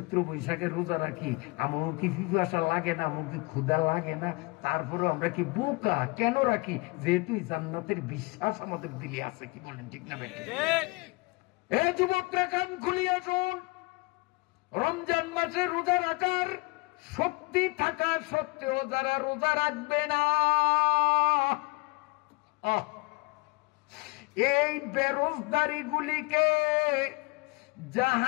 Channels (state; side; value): quieter; right; 26.2 dB